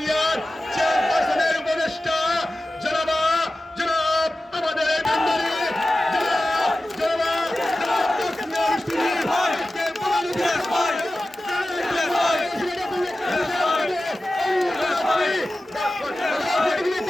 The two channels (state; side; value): normal; both; correlation 0.95